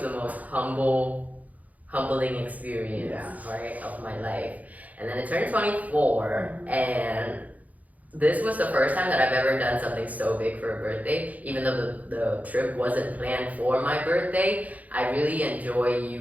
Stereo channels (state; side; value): late; left; 0.076 ms